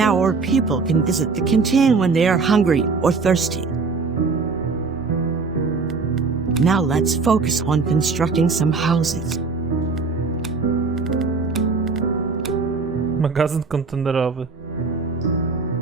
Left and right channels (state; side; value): quieter; left; 4.4 dB